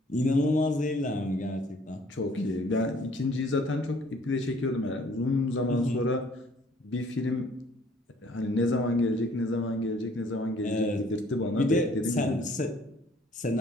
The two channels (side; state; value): both; normal; correlation 0.58